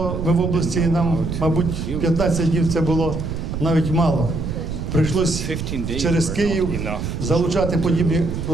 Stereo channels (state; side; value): noise; right; rumble, 5 dB below the sound